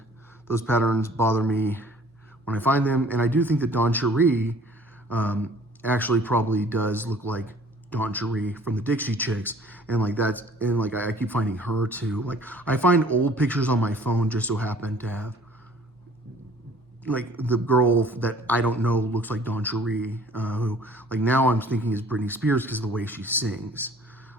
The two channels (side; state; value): both; normal; correlation 0.53